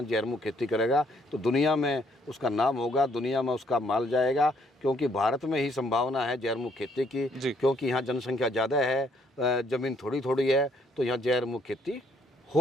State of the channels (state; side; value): normal; both; correlation 0.67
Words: जहर मुक्त खेती करेगा तो दुनिया में उसका नाम होगा, दुनिया में उसका माल जाएगा, क्योंकि भारत में ही संभावना है जहर मुक्त खेती की, क्योंकि यहाँ जनसंख्या ज़्यादा है, ज़मीन थोड़ी थोड़ी है, तो यहाँ जहर मुक्त खेती